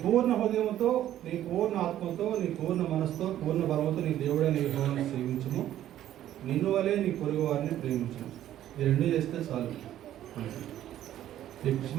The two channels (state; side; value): quieter; left; 12.2 dB